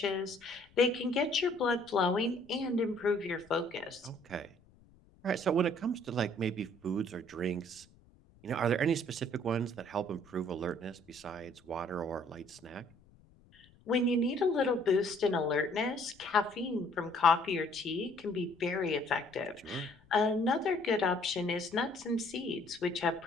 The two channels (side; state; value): left; noise; rumble, 28 dB below the sound